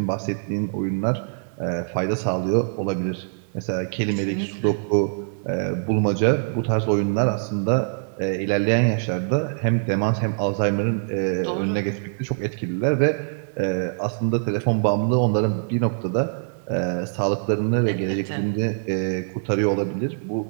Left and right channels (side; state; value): left; silent; digital silence